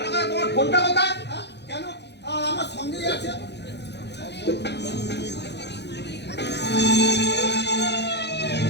করে তোমার ফোনটা কোথায়? কেন? আমার সঙ্গেই আছে।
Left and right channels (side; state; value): right; late; 0.50 ms